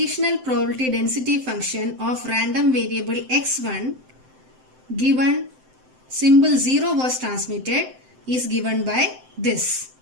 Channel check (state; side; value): late; left; 7.8 ms